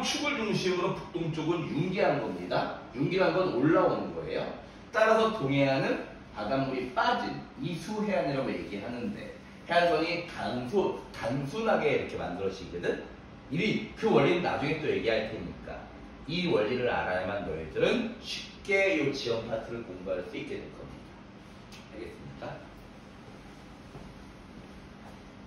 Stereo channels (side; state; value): both; identical; correlation 1.00